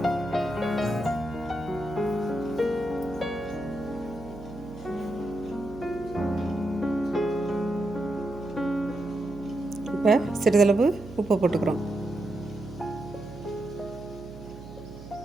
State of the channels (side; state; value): right; noise; hum, 14 dB below the sound